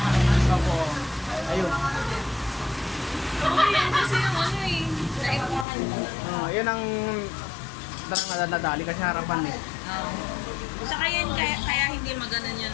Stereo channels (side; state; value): right; drops out; at 5.7 s